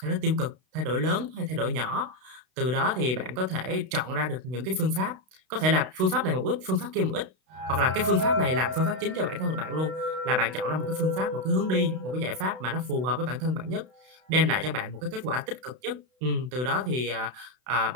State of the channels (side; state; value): left; late; 32 ms